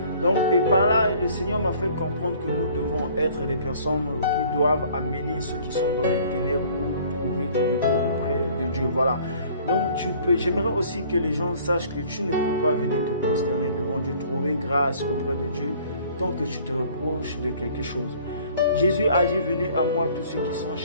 Donc, et par là, le Seigneur m'a fait comprendre que nous devons être des personnes qui doivent amener ceux qui sont dans les ténèbres pour trouver du repos auprès de Dieu. Voilà. Donc, j'aimerais aussi que les gens sachent que tu ne peux pas venir te prosterner devant Dieu, trouver grâce auprès de Dieu, tant que tu te reproches de quelque chose. Jésus a dit, venez à moi tous ceux qui sont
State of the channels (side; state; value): both; inverted; correlation -0.54